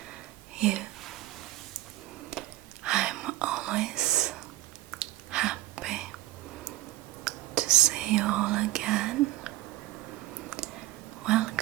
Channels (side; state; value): left; quieter; 16.4 dB